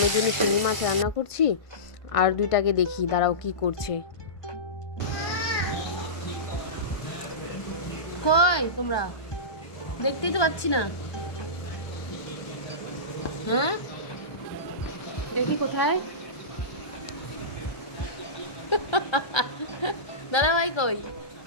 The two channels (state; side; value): late; right; 1.2 ms